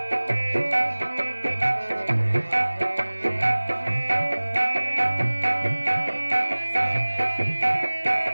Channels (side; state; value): both; inverted; correlation -1.00